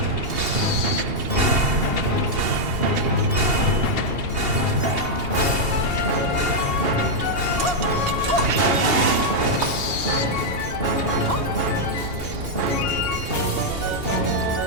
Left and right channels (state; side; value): late; left; 2.8 ms